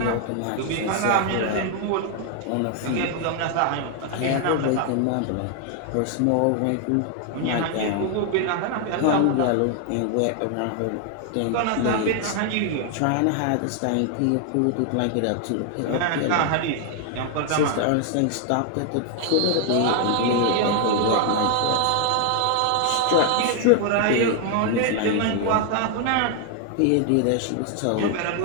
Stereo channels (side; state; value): both; different; correlation 0.00